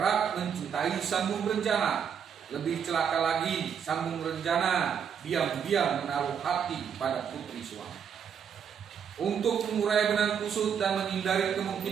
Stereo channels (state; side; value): quieter; left; 7.6 dB